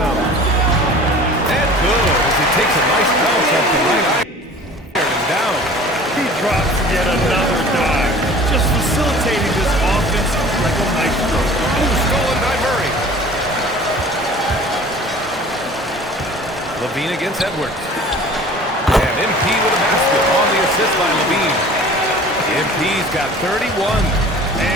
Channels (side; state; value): both; normal; correlation 0.45